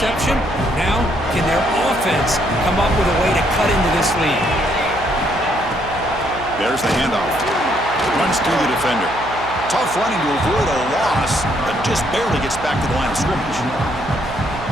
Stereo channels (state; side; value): noise; right; hum, 13 dB below the sound